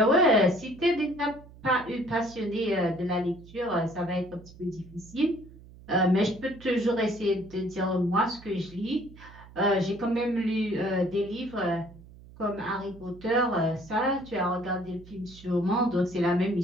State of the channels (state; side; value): noise; right; hum, 20 dB below the sound